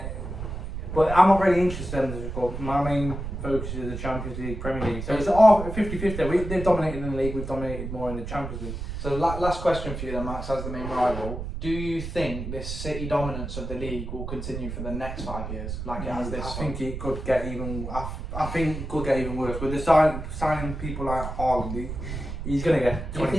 But I'm not really interested in the cup. My main focus is the Champions League, Premier League. So it's all 50-50. They've dominated in the league, we've dominated more in the Champions League. So last question for you then, Max, as the main rival. Do you think this City dominance of the league will continue for the next 5 years, like it has this? I think it could get even. I think it could get even worse. With the signing people like Haaland, he's going to get 25. Do you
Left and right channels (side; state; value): right; noise; rumble, 6 dB below the sound